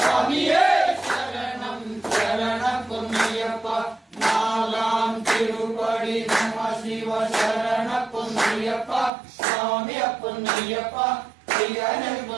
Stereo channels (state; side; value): drops out; left; at 9.1 s